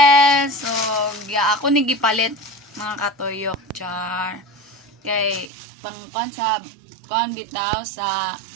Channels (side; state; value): left; drops out; at 5.5 s